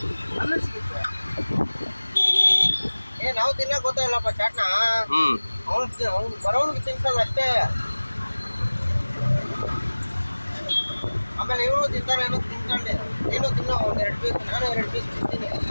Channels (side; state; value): both; inverted; correlation -1.00